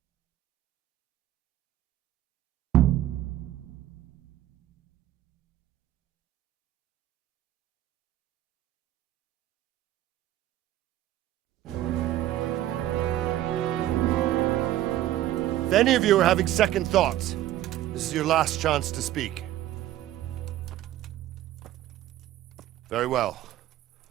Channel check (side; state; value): left; quieter; 13.6 dB